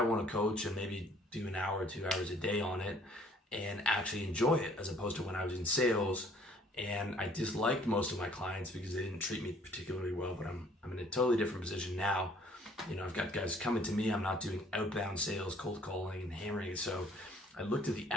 to coach and maybe do an hour or 2 hours a day on it and actually enjoy it, as opposed to when I was in sales and I disliked most of my clients because they didn't treat me particularly well. But I'm in a totally different position now. I've got guys coming to me. I'm not doing outbound sales, cold calling and hammering it. So I looked at the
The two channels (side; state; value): both; normal; correlation 0.58